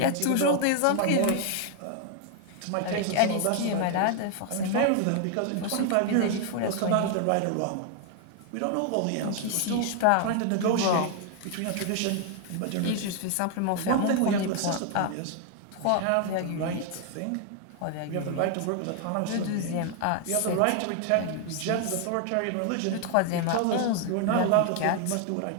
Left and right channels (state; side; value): different; both; correlation 0.00